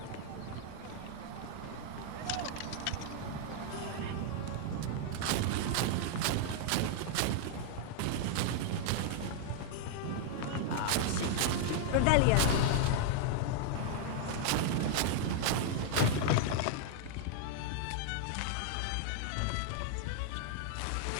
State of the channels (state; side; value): different; both; correlation -0.01